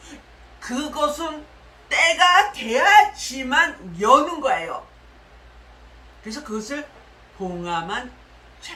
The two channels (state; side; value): identical; both; correlation 1.00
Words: 그것은 때가 돼야지만 여는 거예요. 그래서 그것을 봉함한